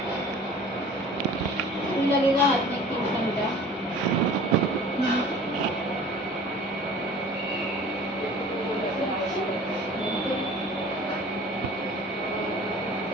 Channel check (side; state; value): both; normal; correlation 0.45